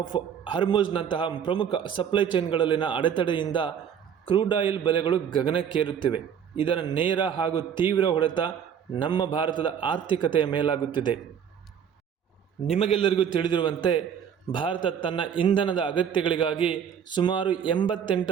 ಹಾರ್ಮುಜ್ನಂತಹ ಪ್ರಮುಖ ಸಪ್ಲೈ ಚೈನ್ಗಳಲ್ಲಿನ ಅಡೆತಡೆಯಿಂದ ಕ್ರೂಡ್ ಆಯಿಲ್ ಬೆಲೆಗಳು ಗಗನಕ್ಕೇರುತ್ತಿವೆ. ಇದರ ನೇರ ಹಾಗೂ ತೀವ್ರ ಹೊಡೆತ ನಮ್ಮ ಭಾರತದ ಆರ್ಥಿಕತೆಯ ಮೇಲಾಗುತ್ತಿದೆ. ನಿಮಗೆಲ್ಲರಿಗೂ ತಿಳಿದಿರುವಂತೆ ಭಾರತ ತನ್ನ ಇಂಧನದ ಅಗತ್ಯಗಳಿಗಾಗಿ ಸುಮಾರು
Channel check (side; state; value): left; quieter; 8.2 dB